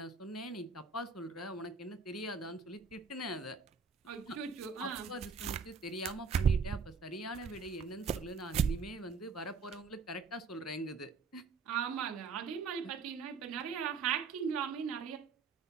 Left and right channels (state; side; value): quieter; left; 5.3 dB